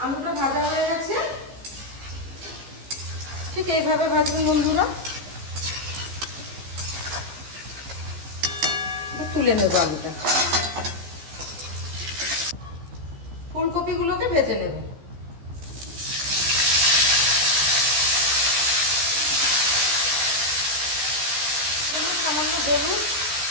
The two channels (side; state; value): left; late; 14 ms